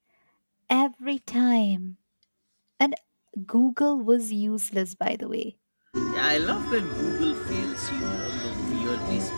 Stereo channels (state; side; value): inverted; both; correlation -1.00